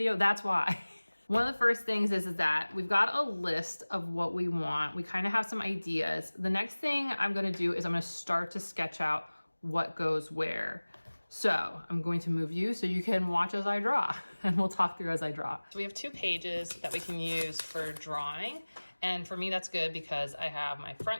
That's why. One of the first things is that we've got a list of what we want. We kind of have some ideas. The next thing I'm gonna do is I'm gonna start to sketch out what goes where. So I'm going to move you so you can watch as I draw, and we'll talk through as I draw. So we have 2 pages that we can use for drawing. And for me, that's good because I have my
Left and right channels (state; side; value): inverted; both; correlation -1.00